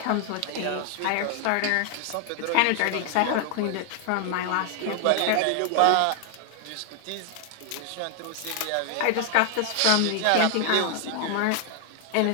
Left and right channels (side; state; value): both; different; correlation 0.00